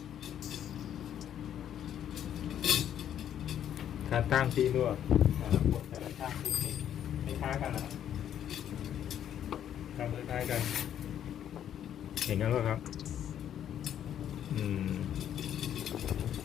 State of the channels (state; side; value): quieter; right; 10.1 dB